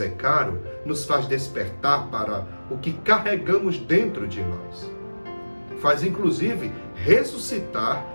caro, nos faz despertar para o que carregamos dentro de nós. Faz, inclusive, ressuscitar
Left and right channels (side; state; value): both; inverted; correlation -1.00